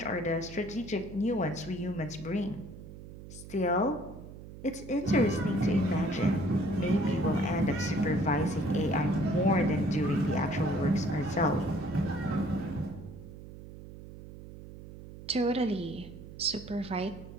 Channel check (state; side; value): noise; right; hum, 15 dB below the sound